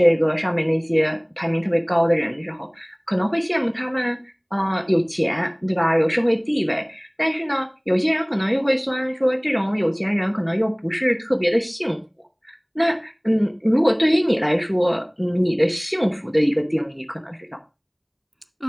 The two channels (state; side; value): identical; both; correlation 1.00